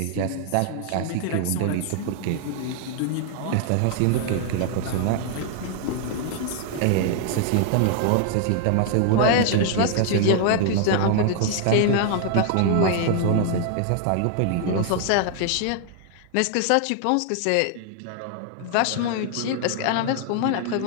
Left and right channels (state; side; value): different; both; correlation 0.00